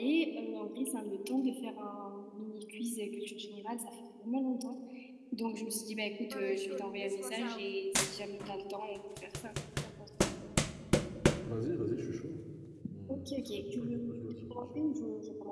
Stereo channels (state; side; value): identical; both; correlation 1.00